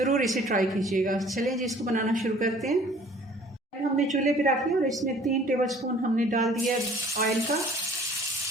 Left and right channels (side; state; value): both; normal; correlation 0.53